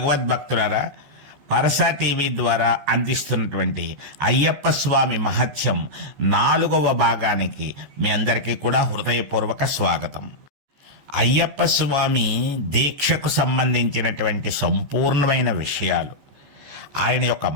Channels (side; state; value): left; late; 14 ms